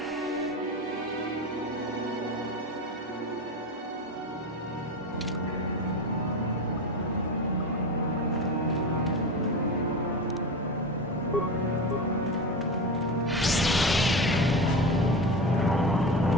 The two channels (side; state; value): both; normal; correlation 0.24